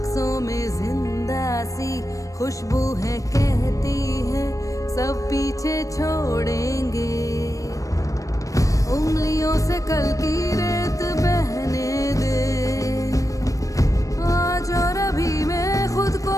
में जिंदा सी खुशबू है, कहती है सब पीछे छोड़ेंगे। उंगलियों से कल की रेत बहने दे, आज और अभी में खुद को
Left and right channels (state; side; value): late; right; 0.16 ms